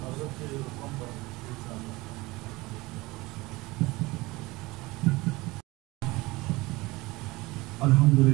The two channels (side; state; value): left; quieter; 21.6 dB